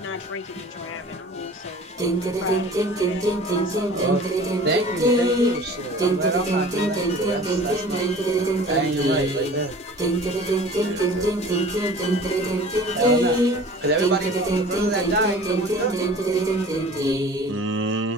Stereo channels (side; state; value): both; normal; correlation 0.44